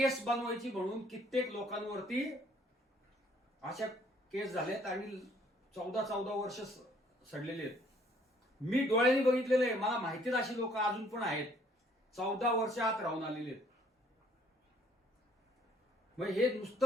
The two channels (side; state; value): both; normal; correlation 0.62